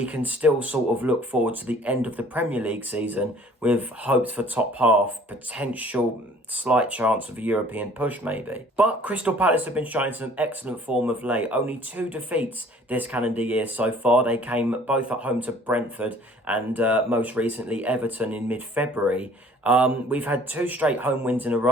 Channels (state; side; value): normal; both; correlation 0.53